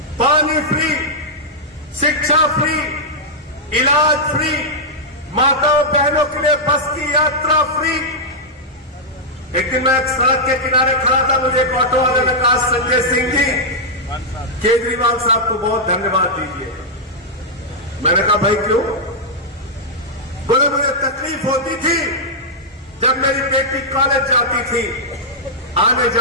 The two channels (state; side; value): normal; both; correlation -0.07